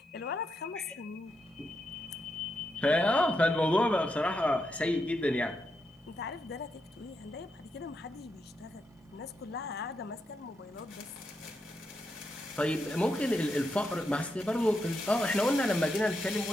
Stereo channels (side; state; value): both; normal; correlation 0.83